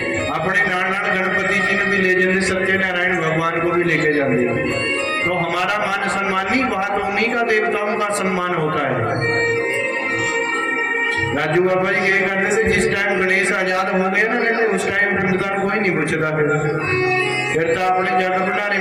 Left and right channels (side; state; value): both; identical; correlation 1.00